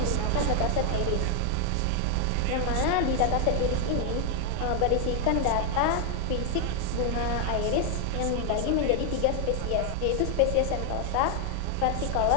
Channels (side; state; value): both; different; correlation 0.00